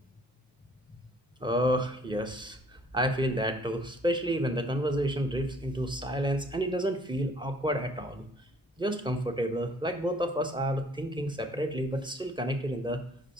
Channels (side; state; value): both; normal; correlation 0.59